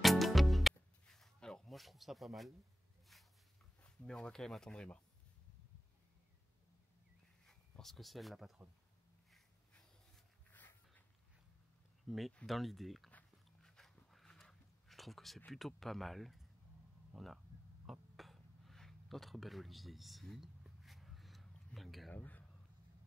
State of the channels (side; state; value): both; normal; correlation 0.96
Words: Alors moi je trouve ça pas mal, mais on va quand même attendre Emma. Parce que c'est elle la patronne. Mais dans l'idée, je trouve que c'est plutôt pas mal. On a hop, notre bel olivier ici, l'agave.